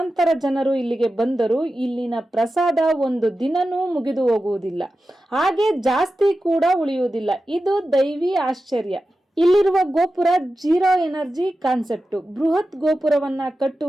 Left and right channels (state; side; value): normal; both; correlation 0.92